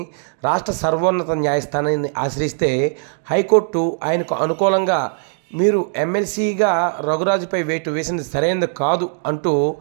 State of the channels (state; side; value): silent; left; digital silence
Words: రాష్ట్ర సర్వోన్నత న్యాయస్థానాన్ని ఆశ్రయిస్తే హైకోర్టు ఆయనకు అనుకూలంగా మీరు ఎమ్మెల్సీగా రఘురాజుపై వేటు వేసినది సరైనది కాదు అంటూ